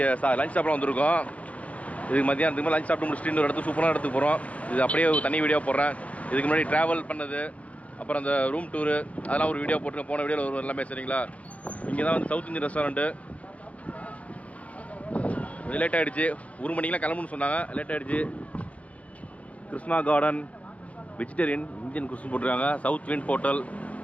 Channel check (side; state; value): right; late; 0.066 ms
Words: லஞ்ச் சாப்பிட வந்திருக்கோம். இதுக்கு மதியானத்துக்கு லஞ்ச் சாப்பிட்டு முடிச்சுட்டு இன்னொரு இடத்துக்கு சூப்பரான இடத்துக்கு போகிறோம். இது அப்படியே தனி வீடியோ போடுறேன். இதுக்கு முன்னாடி ட்ராவல் பண்ணது, அப்புறம் அந்த ரூம் டூரு, அதெல்லாம் ஒரு வீடியோ போட்டுருக்கேன். போன வீடியோவில் ஒரு எல்லாமே சரிங்களா. இங்கே தான் வந்து சவுத் இந்தியன் ரெஸ்டாரண்ட்டு. லேட் ஆகிடுச்சு, 1 மணிக்கெலாம் கிளம்புன்னு சொன்னாங்க. லேட் ஆகிடுச்சு. கிருஷ்ணா கார்டன் வெஜிடேரியன் இந்தியன் குஸ்ன்னு போட்டிருக்காங்க. சவுத் விண்ட் ஹோட்டல்